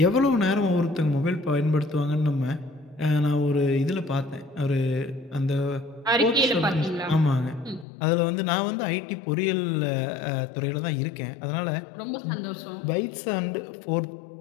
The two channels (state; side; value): drops out; right; at 7.9 s